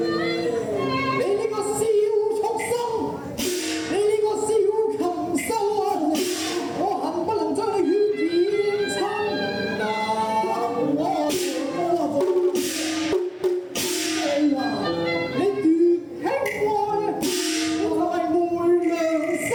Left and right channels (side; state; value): both; identical; correlation 1.00